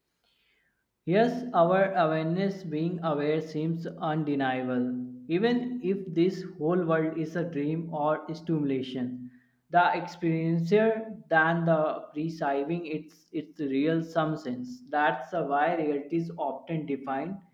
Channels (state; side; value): identical; both; correlation 1.00